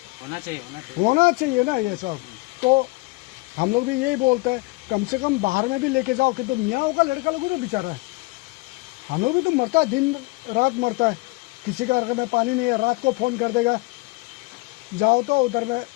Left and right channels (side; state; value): right; quieter; 25.0 dB